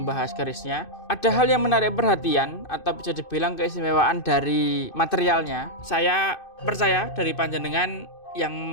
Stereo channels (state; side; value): late; right; 2.6 ms